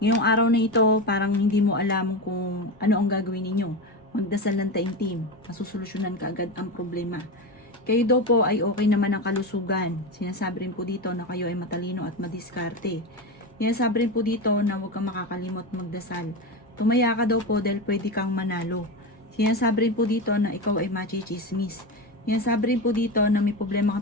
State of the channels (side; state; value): both; normal; correlation 0.19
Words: araw na ito, parang hindi mo alam kung ano ang gagawin ninyo. Magdasal ng taimtim, masusolusyonan ka agad ang problema. Kayo daw po ay okay naman ang kalusugan. Sinasabi rin po dito na kayo ay matalino at madiskarte. Sinasabi rin po dito na huwag kang makakalimot magdasal. Tumaya ka daw po dahil pwede kang manalo. Sinasabi rin po dito na ikaw ay machichismis. Sinasabi rin po dito na may problema